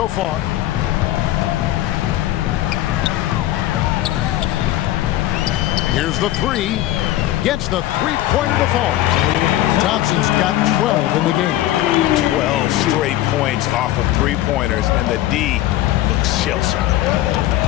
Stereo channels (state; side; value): quieter; right; 14.5 dB